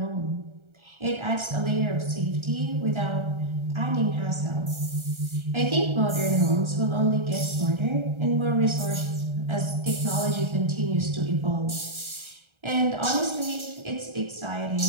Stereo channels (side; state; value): left; late; 1.3 ms